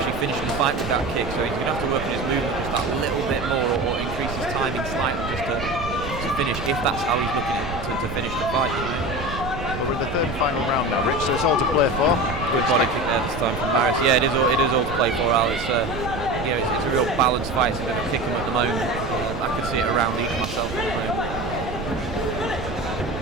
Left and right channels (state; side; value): noise; right; rumble, 8 dB below the sound